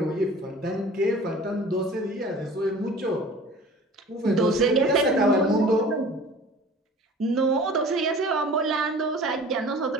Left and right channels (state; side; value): normal; both; correlation 0.44